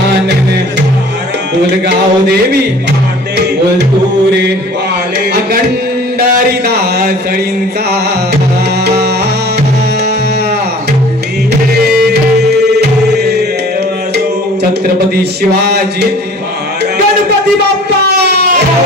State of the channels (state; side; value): normal; both; correlation 0.48